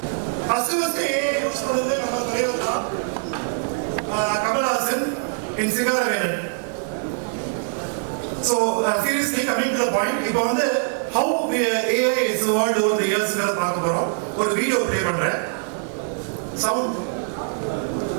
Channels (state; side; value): silent; left; 63 dB below the other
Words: ஃபர்ஸ்ட் ஏஐ யூஸ் பண்ணது நம்ம தலைவர் தான், Kamal Haasan in Singaravelan. So seriously coming to the point, இப்போ வந்து how AI is evolved over the years பார்க்க போறோம். ஒரு வீடியோ ப்ளே பண்றேன். Sound.